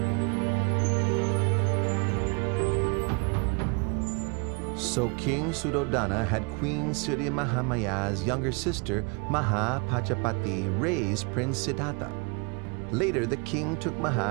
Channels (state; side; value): quieter; left; 33.0 dB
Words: So King Suddhodana had Queen Siddhi Mahamaya's younger sister, Mahapajapati, raise Prince Siddhartha. Later, the king took